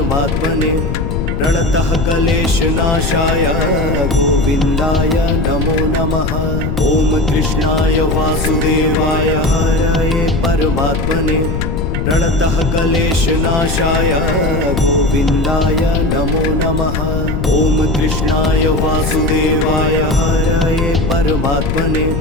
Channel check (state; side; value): noise; left; rumble, 2 dB below the sound